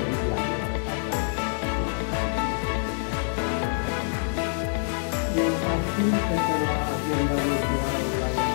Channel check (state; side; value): silent; right; digital silence